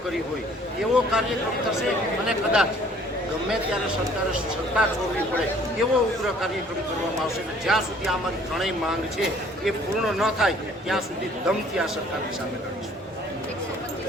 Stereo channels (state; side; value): normal; both; correlation 0.56